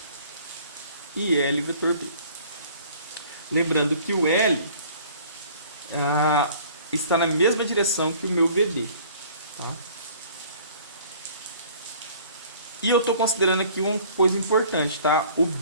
IL vetor B. Lembrando que o L está na mesma direção que o meu VD, tá? E eu estou considerando aqui uma coisa importante, tá? O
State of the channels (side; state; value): both; inverted; correlation -0.52